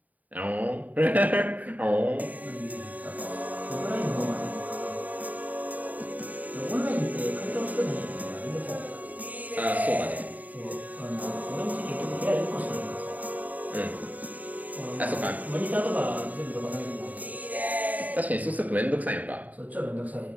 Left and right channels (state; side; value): late; left; 0.076 ms